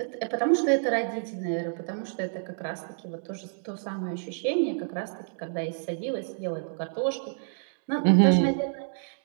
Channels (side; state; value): left; silent; digital silence